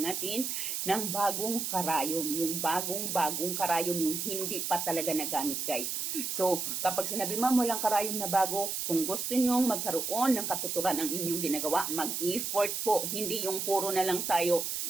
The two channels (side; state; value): right; noise; hiss, 2 dB below the sound